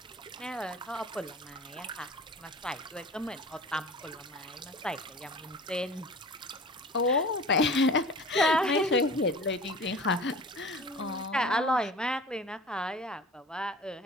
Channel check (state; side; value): normal; both; correlation 0.40